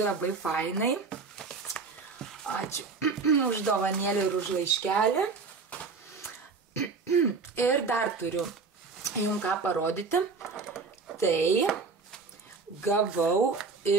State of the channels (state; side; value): quieter; left; 4.6 dB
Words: fainai. Ačiū už dovanėlį ir už laiškelį. Ir dar turiu jums ką parodyti. Tai gavau